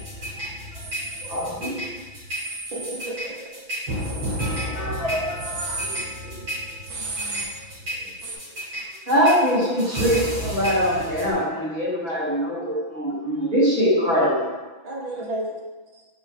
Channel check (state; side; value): late; left; 6.0 ms